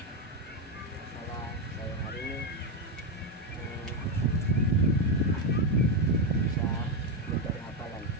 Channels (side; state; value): both; normal; correlation 0.07